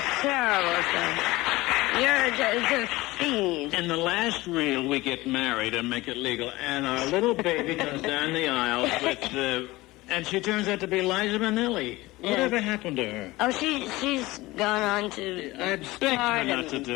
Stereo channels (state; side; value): quieter; right; 19.8 dB